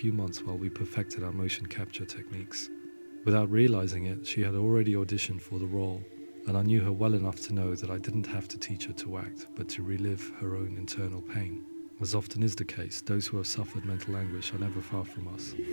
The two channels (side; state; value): both; inverted; correlation -1.00